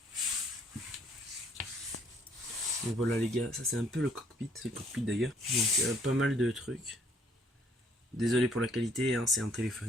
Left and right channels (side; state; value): both; normal; correlation 0.64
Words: Donc voilà les gars, ça c'est un peu le cockpit, c'est le cockpit d'ailleurs. Donc il y a pas mal de trucs. Désolé pour la qualité, hein, c'est un